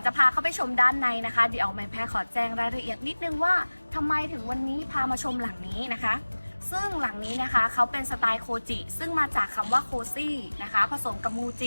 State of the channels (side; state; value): both; inverted; correlation -1.00